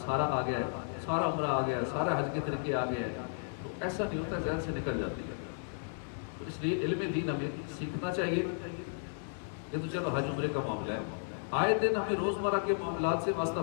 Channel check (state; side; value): silent; right; digital silence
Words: آ گیا ہے، سارا عمرہ آ گیا ہے، سارا حج کے طریقے آ گئے ہیں، تو ایسا نہیں ہوتا، ذہن سے نکل جاتی ہے۔ تو اس لیے علم دین ہمیں سیکھنا چاہیے۔ یہ تو چلو حج عمرے کا معاملہ ہے، آئے دن ہمیں روزمرہ کے معاملات سے واسطہ